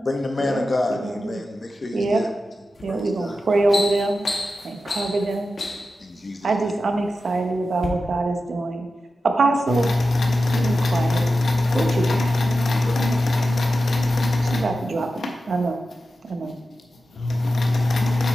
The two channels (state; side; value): normal; both; correlation 0.92